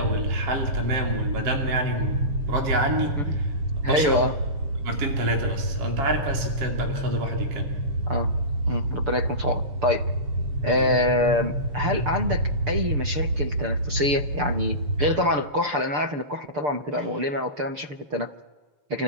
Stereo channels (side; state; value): left; late; 6.8 ms